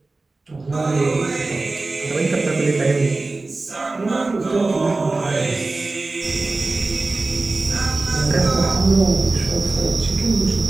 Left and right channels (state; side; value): quieter; left; 3.4 dB